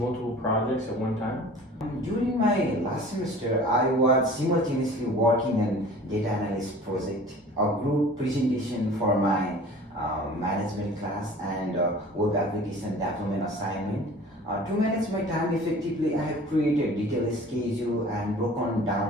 projects at one time? During my last semester, I was simultaneously working on data analyst project, a group presentation for my management class, and web application development assignment. To manage my time effectively, I have created detailed schedule and broken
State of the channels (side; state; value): both; normal; correlation 0.44